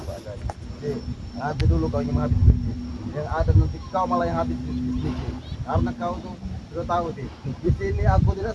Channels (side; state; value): both; identical; correlation 1.00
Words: apa adanya. Jadi, nanti dulu kau yang habis duit. Yang ada nanti kau malah yang habis duit. Karena kau tuh sudah tahu sih. Di sini aku